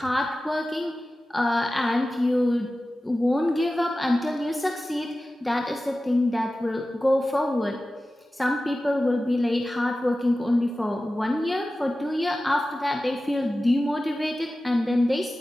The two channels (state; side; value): normal; both; correlation 0.95